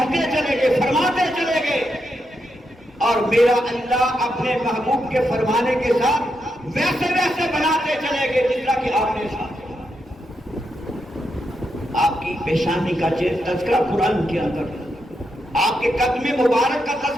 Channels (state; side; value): normal; both; correlation 0.83